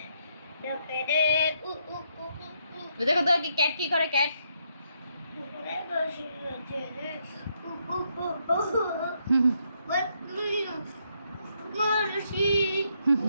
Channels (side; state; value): both; inverted; correlation -0.75